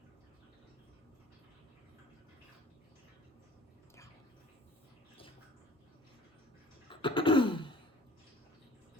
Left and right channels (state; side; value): normal; both; correlation 0.49